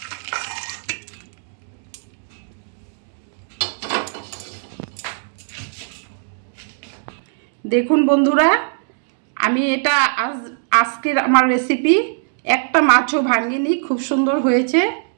দেখুন বন্ধুরা, আমি এটা আজকের আমার রেসিপি, একটা মাছও ভাঙিনি, খুব সুন্দর হয়েছে।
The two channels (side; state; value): left; silent; digital silence